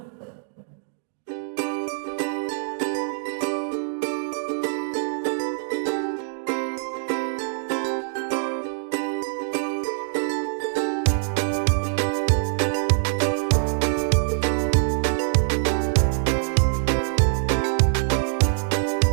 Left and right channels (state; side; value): silent; left; digital silence